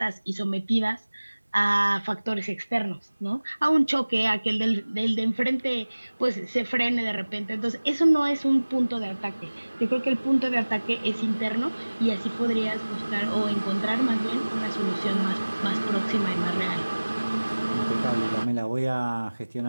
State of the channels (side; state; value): both; inverted; correlation -1.00